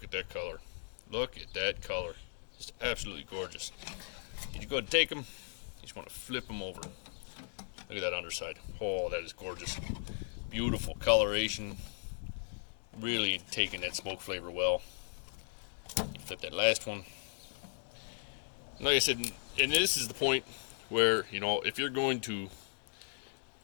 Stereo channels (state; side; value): silent; right; digital silence